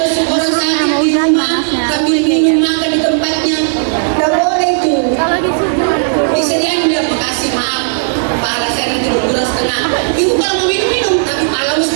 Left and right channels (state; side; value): silent; left; digital silence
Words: besuk orang sakit di rumah sambil minum makan di tempatnya. Nggak boleh itu. Kalau disuruh Disediain dia makasih maaf. Pahala saya nanti berkurang setengah. Ibu kalau mau minum tapi pahala